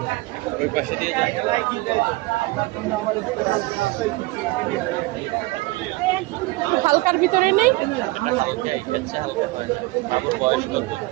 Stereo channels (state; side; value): quieter; left; 21.4 dB